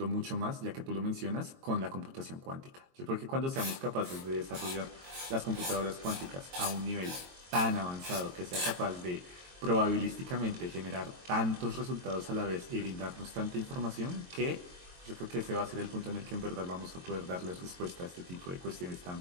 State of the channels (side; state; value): left; late; 22 ms